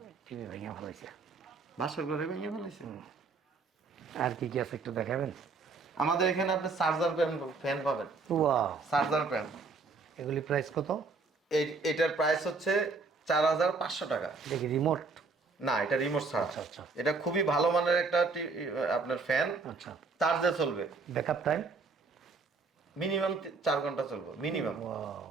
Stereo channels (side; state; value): left; quieter; 4.2 dB